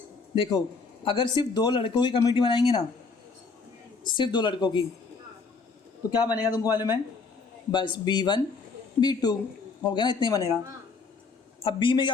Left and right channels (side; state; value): right; quieter; 4.5 dB